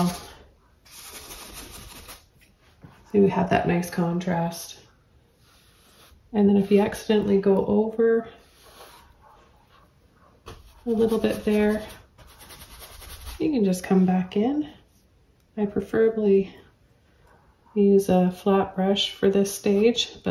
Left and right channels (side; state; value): both; identical; correlation 1.00